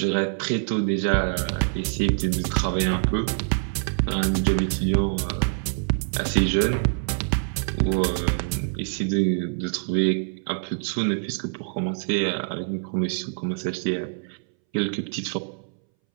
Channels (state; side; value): silent; left; 62 dB below the other